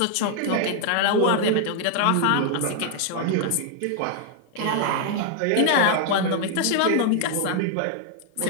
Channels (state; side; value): different; both; correlation 0.00